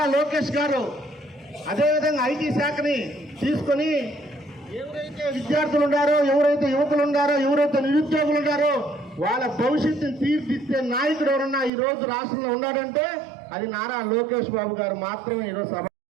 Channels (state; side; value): drops out; left; at 11.7 s